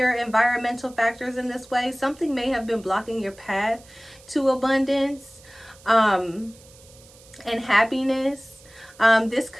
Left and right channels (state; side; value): noise; right; hiss, 24 dB below the sound